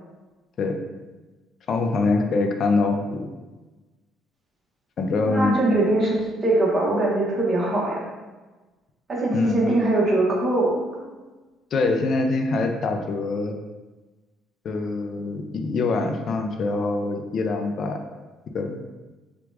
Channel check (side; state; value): both; normal; correlation 0.72